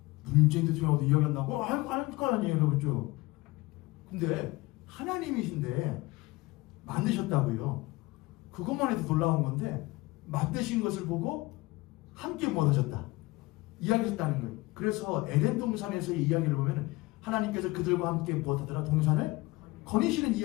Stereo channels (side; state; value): right; quieter; 21.4 dB